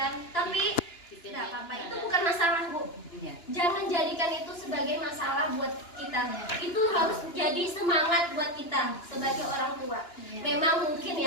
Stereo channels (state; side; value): late; right; 2.9 ms